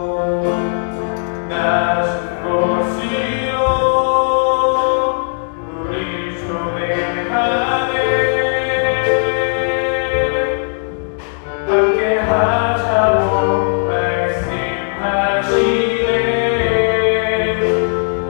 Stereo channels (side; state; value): right; silent; digital silence